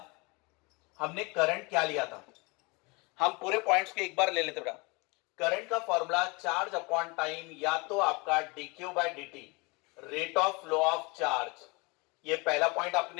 हमने करंट क्या लिया था, हम पूरे पॉइंट्स के एक बार ले लेते बेटा। करंट का फॉर्मूला चार्ज अपॉन टाइम, या तो आपका dq by dt, rate of flow of charge. ये पहला पॉइंट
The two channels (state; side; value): quieter; right; 27.7 dB